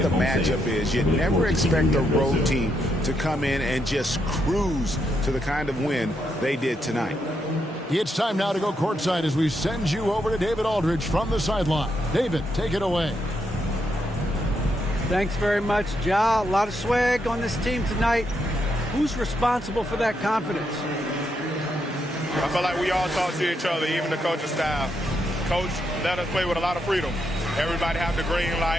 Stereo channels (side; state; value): both; normal; correlation 0.80